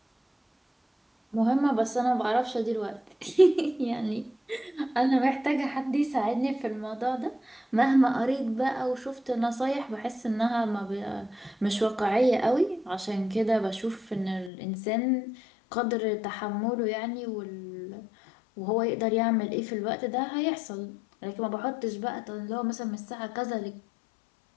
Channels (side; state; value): right; drops out; at 14.5 s